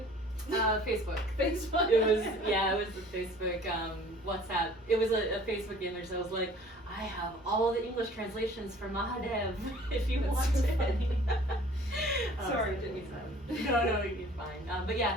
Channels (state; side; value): normal; both; correlation 0.51